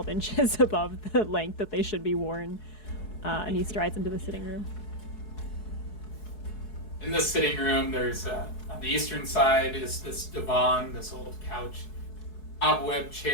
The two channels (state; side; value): late; right; 4.7 ms